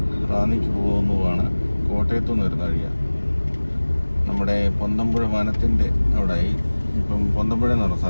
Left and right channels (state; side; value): inverted; both; correlation -1.00